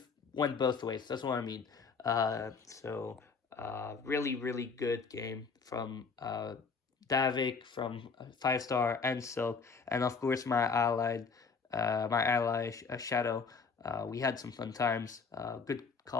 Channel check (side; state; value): right; quieter; 5.0 dB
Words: went both ways. That's what I mean. Really good game from Davvyk, from 5-star and Silk, and of course my ally Shadow. We had some fun times, good